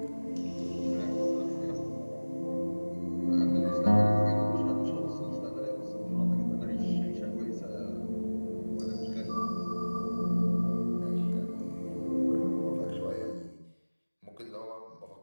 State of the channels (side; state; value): both; inverted; correlation -1.00